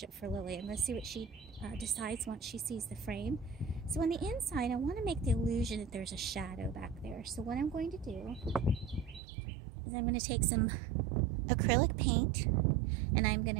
it for Lily. I'm going to see what she decides once she sees the frame. So on the inside, I want to make the illusion that there's a shadow back there. So what I'm going to do is I'm going to take some acrylic paint, and I'm going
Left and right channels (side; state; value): left; drops out; at 9.2 s